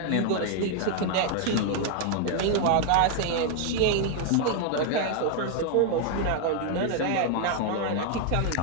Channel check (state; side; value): different; both; correlation 0.00